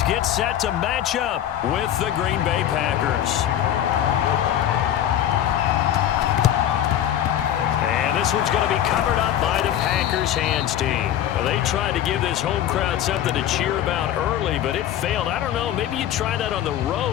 get set to match up with the Green Bay Packers. And this one's going to be covered up by the Packers hands team. Well, they tried to give this home crowd something to cheer about early, but it failed. I don't know. Maybe you try that on the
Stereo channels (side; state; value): right; quieter; 11.1 dB